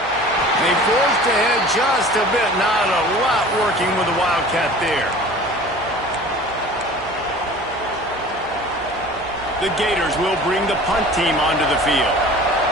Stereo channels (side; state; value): right; noise; hum, 21 dB below the sound